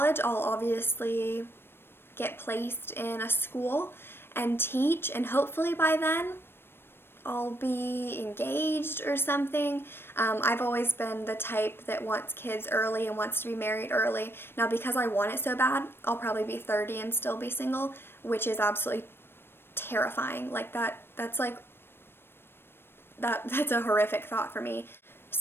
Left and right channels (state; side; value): late; right; 0.11 ms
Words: I'll obviously get placed in a school and teach, and hopefully by then I'll be engaged or something. I've always been the type that wants kids early and wants to be married early. Now, because I want it so bad, I'll probably be 30 and still be single, which is absolutely terrifying. Like that's a horrific thought for me.